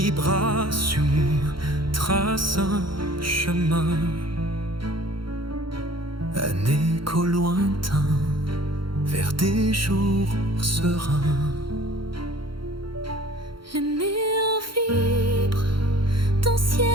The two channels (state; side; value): late; left; 0.73 ms